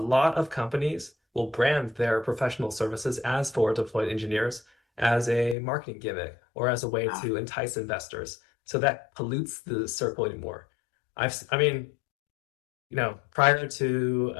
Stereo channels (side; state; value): right; drops out; at 5.6 s